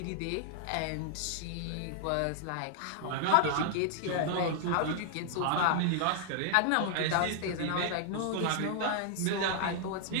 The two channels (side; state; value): both; different; correlation -0.01